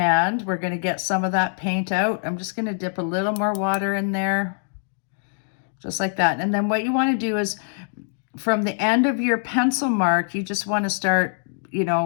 we're going to get some of that paint out. I'm just going to dip a little more water in there, just like that. And then what you want to do is from the end of your pencil mark, you just want to start,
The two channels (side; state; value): right; silent; digital silence